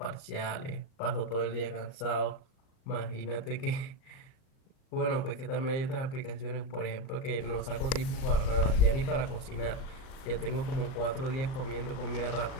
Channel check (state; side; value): late; right; 39 ms